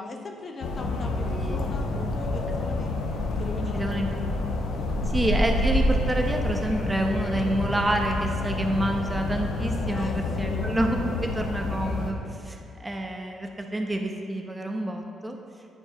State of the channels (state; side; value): normal; both; correlation 0.78